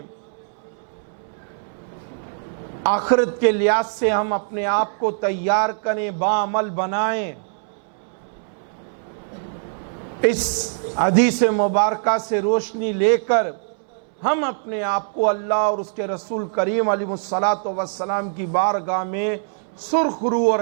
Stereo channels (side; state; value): left; silent; 62 dB below the other